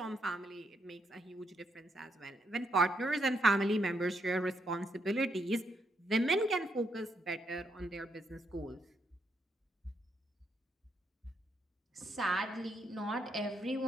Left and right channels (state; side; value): normal; both; correlation 0.77